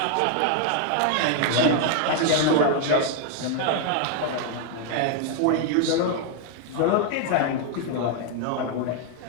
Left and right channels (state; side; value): different; both; correlation 0.00